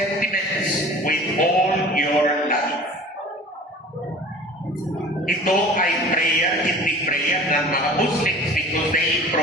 with all your life. Ito ay prayer, hindi prayer ng mga Muslims because they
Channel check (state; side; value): normal; both; correlation 0.43